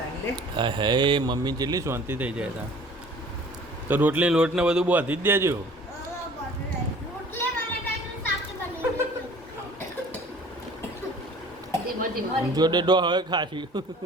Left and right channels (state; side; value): normal; both; correlation 0.49